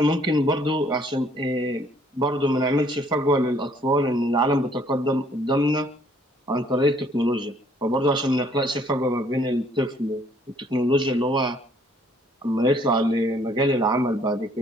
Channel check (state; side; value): normal; both; correlation 0.62